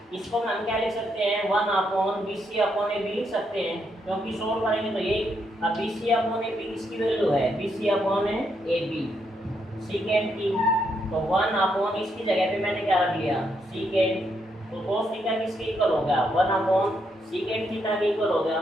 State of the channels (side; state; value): both; normal; correlation 0.78